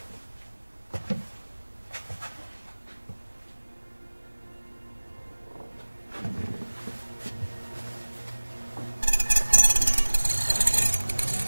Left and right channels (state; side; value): inverted; both; correlation -1.00